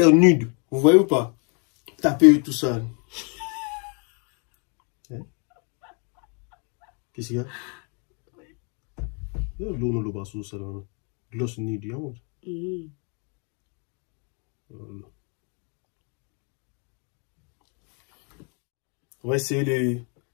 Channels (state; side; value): quieter; right; 37.6 dB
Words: nude. Vous voyez ou pas? Taper tout ça. Hein? Qu'est-ce qu'il y a? L'eau ne le passe ça là. Gloss nude. Voilà. On va essayer